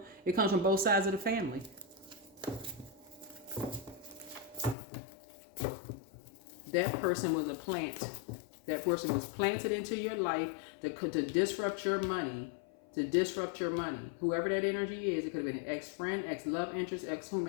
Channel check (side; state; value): right; drops out; at 4.8 s